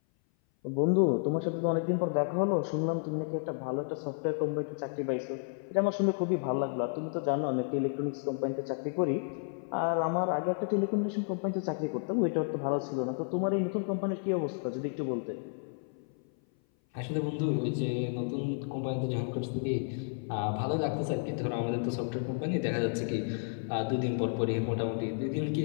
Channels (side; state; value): right; silent; 57 dB below the other